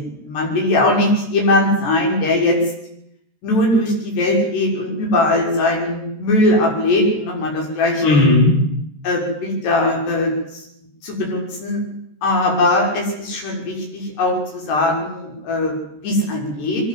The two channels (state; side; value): late; right; 13 ms